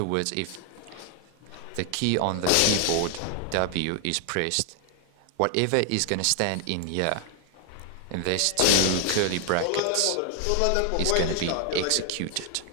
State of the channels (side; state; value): both; different; correlation 0.00